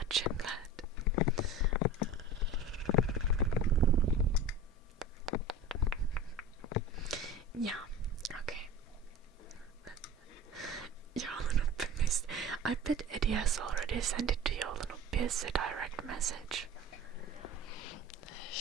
Jimlad. Yeah, okay. Joulunuppi missed. I bet Eddie has already sent it to Joulunuppi as a direct message.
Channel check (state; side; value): normal; both; correlation 0.36